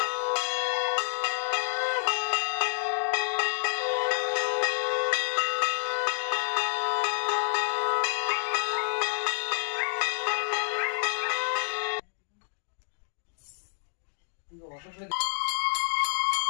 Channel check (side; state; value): right; silent; digital silence